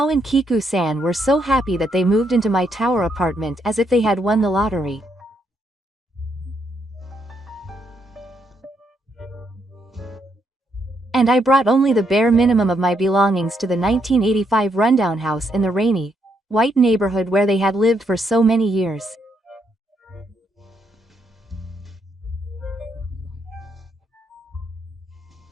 and Kiku-san were so happy that they moved into my tower apartment as if they had won the lottery. And I brought only the bare minimum of my belongings to the 1985 rundown house in the rainy, white neighborhood where they had lived for so many years.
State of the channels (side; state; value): both; normal; correlation 0.76